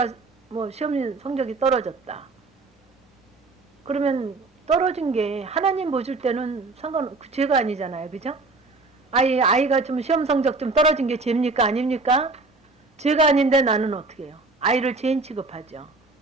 시험 성적이 떨어졌다. 그러면 떨어진 게 하나님 보실 때는 죄가 아니잖아요. 그죠? 아이가 좀 시험 성적 좀 떨어진 게 죄입니까? 아닙니까? 죄가 아닌데 나는 어떻게 해요? 아이를 죄인 취급하죠.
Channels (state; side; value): quieter; left; 3.6 dB